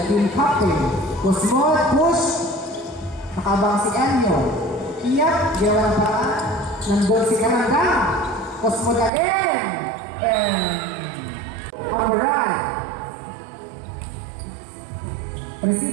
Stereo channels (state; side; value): drops out; left; at 9.1 s